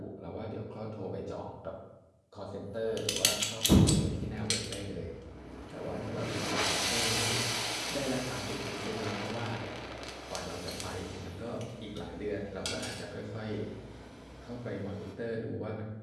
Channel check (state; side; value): identical; both; correlation 1.00